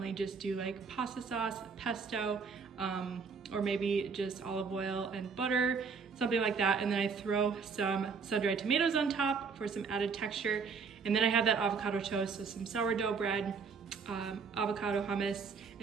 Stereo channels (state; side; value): quieter; left; 5.4 dB